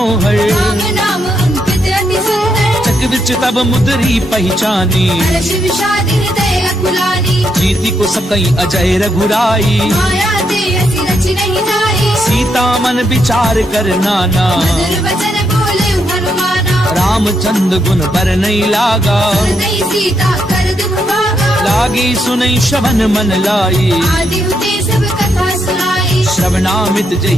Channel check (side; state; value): both; normal; correlation 0.79